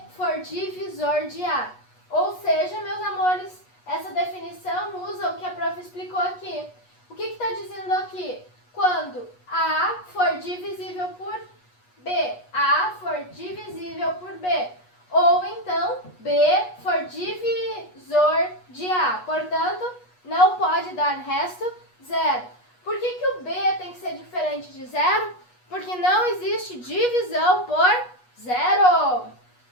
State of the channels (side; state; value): right; late; 8.2 ms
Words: for divisor de A. Ou seja, meus amores, essa definição usa o que a prof explicou aqui. O que está dizendo aqui? Quando A for divisível por B, A for divisível por B, ou então B for divisor de A. Portanto, não pode dar resto zero. Por que o B tem que ser diferente de zero? Porque não existe divisão por zero.